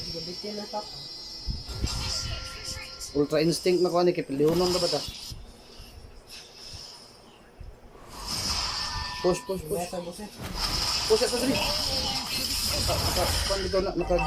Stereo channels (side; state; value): both; identical; correlation 1.00